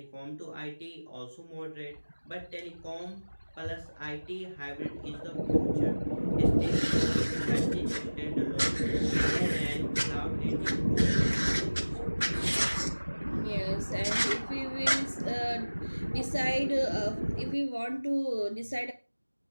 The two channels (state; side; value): inverted; both; correlation -1.00